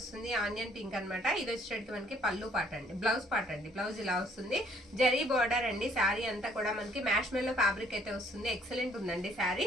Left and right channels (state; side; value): normal; both; correlation 0.63